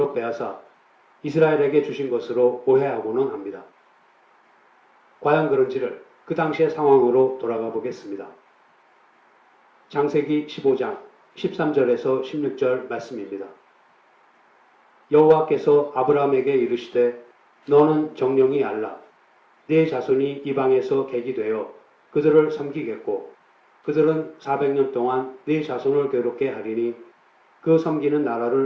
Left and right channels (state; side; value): identical; both; correlation 1.00